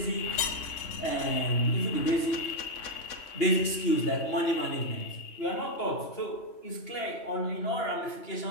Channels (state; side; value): late; right; 2.8 ms